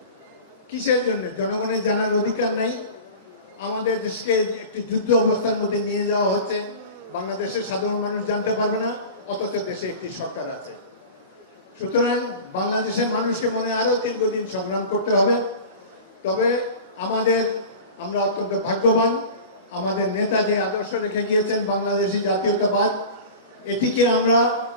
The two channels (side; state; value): both; inverted; correlation -0.35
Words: কিসের জন্য? জনগণের জানার অধিকার নাই? আমাদের দেশকে একটি যুদ্ধ অবস্থার মধ্যে নিয়ে যাওয়া হচ্ছে, বাংলাদেশের সাধারণ মানুষ জানতে পারবে না, অথচ দেশে একটি সরকার আছে। সুতরাং বাংলাদেশের মানুষকে মনে আরো দীর্ঘদিন সংগ্রাম করতে হবে। তবে আমরা অত্যন্ত ভাগ্যবান, আমাদের নেতা যে আদর্শ রেখে গিয়েছেন বাংলাদেশী জাতীয়তাবাদ, এটিকে আমরা